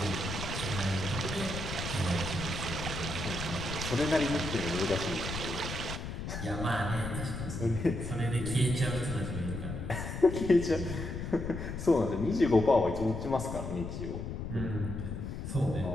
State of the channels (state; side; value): noise; left; rumble, 6 dB below the sound